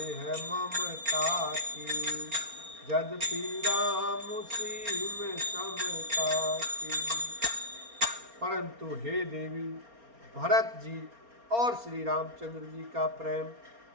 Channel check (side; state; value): left; late; 4.3 ms